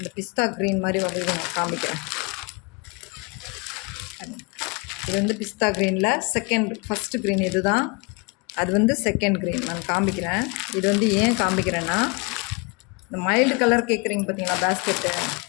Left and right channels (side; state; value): right; quieter; 29.3 dB